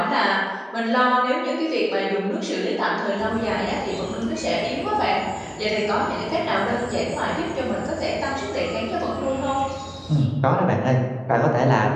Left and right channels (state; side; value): identical; both; correlation 1.00